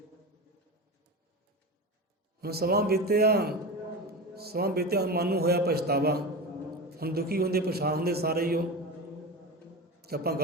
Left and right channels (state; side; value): normal; both; correlation 0.25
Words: ਹੁਣ ਸਮਾਂ ਬੀਤਿਆ, ਹੁਣ ਮਨ ਨੂੰ ਹੋਇਆ ਪਛਤਾਵਾ। ਹੁਣ ਦੁਖੀ ਹੁੰਦੇ, ਪਛਾਣ ਹੁੰਦੇ ਸਾਰੇ ਹੀ ਉਹ ਕਿ ਆਪਾਂ